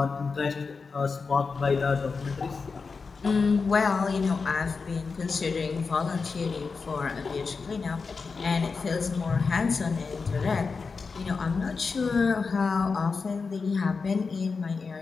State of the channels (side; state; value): right; quieter; 4.7 dB